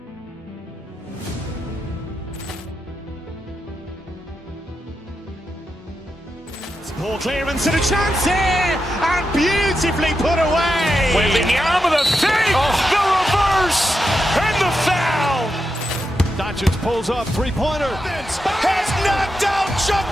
Ball clearance and a chance here, and beautifully put away. Wembanyama with a save, the reverse, and the foul. Doncic pulls up, three-pointer. Has knocked out Chuck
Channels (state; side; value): normal; both; correlation 0.87